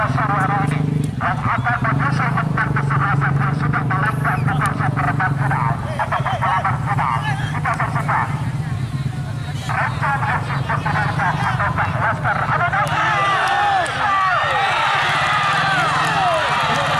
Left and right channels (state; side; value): identical; both; correlation 1.00